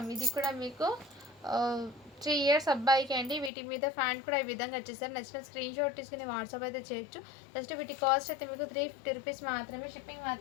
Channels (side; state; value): right; drops out; at 3.5 s